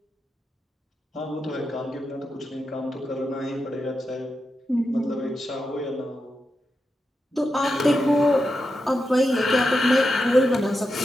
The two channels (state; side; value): normal; both; correlation 0.88